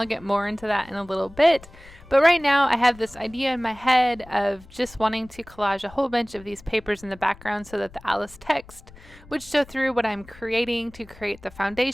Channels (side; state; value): left; noise; rumble, 22 dB below the sound